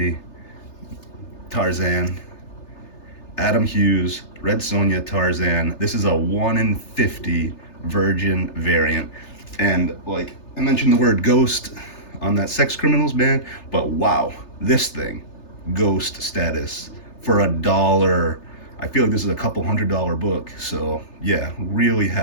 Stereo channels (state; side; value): late; right; 3.3 ms